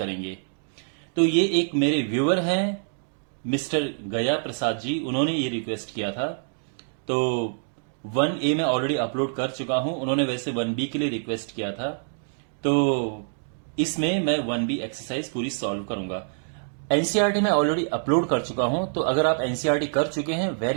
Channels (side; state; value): left; silent; digital silence